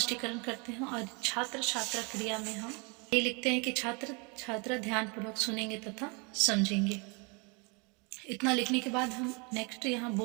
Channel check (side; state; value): left; quieter; 31.3 dB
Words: करते हैं, और छात्र छात्रा क्रिया में हम ये लिखते हैं कि छात्र छात्रा ध्यानपूर्वक सुनेंगे तथा समझेंगे। इतना लिखने के बाद हम नेक्स्ट यहाँ